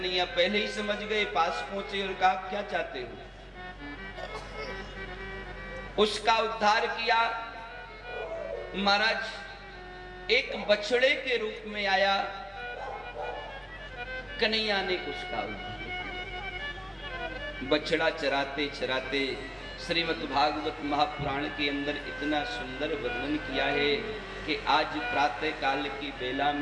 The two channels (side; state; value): both; identical; correlation 1.00